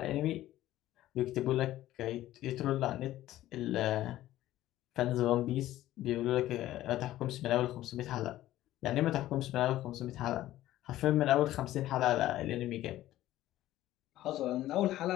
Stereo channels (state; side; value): quieter; right; 14.5 dB